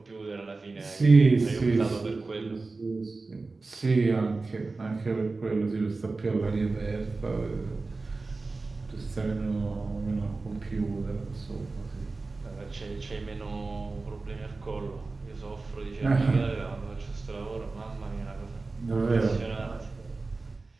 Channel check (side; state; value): left; quieter; 3.7 dB